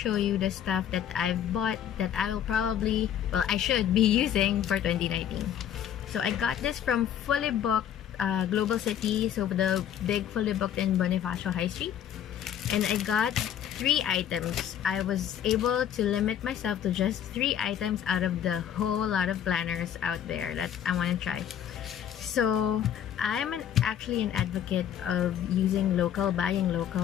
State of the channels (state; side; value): quieter; right; 9.9 dB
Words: you the stuff that I've bought that I will probably, well, I should be using for 2019. So I got this from Fully Booked Global City, so the big Fully Booked in Bonifacio High Street. And I got 3 items. I was able to limit myself to just 3 items out of the whole lot of planners out there that I want to try. So I'm actually an advocate of using local, buying